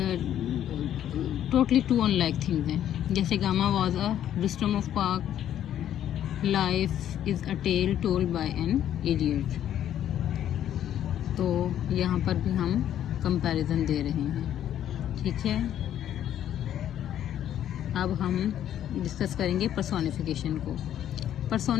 टोटली 2 अनलाइक थिंग्स हैं। जैसे Gama was a Rustam of park, life is a tale told by an idiot. तो यहाँ पर भी हम कंपैरिजन दे रहे हैं। ठीक है। अब हम डिस्कस करेंगे पर्सोनिफिकेशन को।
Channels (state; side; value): quieter; right; 10.9 dB